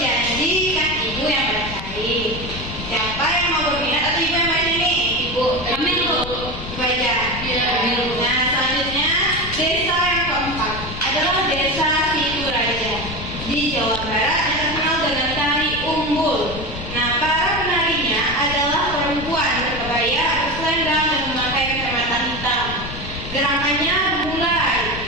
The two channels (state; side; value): noise; left; rumble, 10 dB below the sound